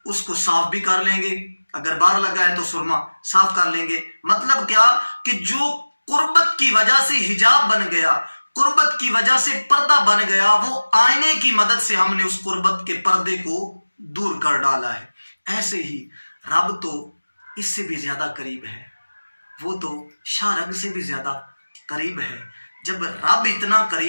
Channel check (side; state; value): both; inverted; correlation -1.00